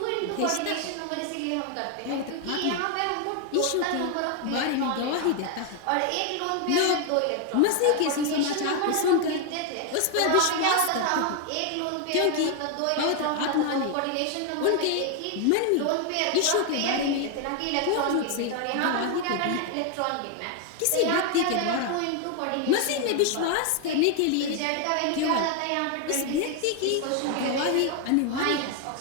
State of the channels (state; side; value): different; both; correlation 0.01